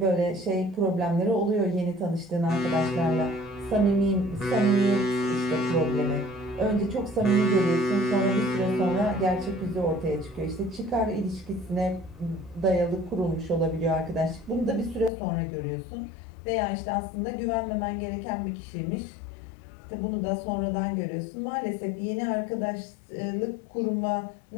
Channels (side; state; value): right; drops out; at 15.1 s